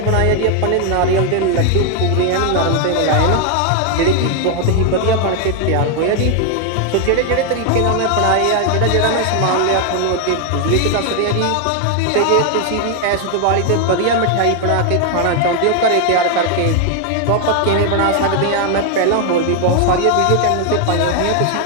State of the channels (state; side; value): different; both; correlation 0.00